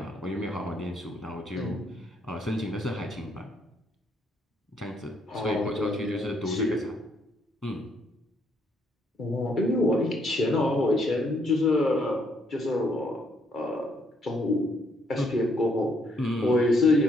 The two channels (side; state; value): both; normal; correlation 0.71